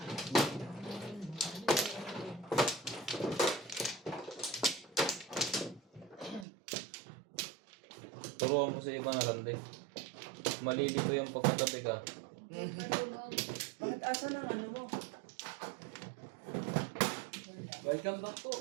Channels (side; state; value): left; drops out; at 6.5 s